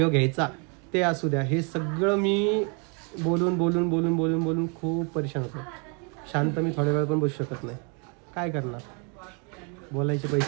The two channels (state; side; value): quieter; left; 35.3 dB